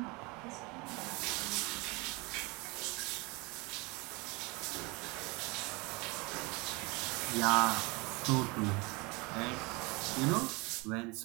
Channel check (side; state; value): left; quieter; 26.4 dB